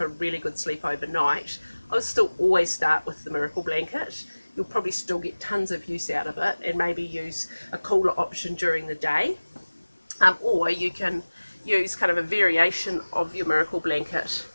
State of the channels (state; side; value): inverted; both; correlation -1.00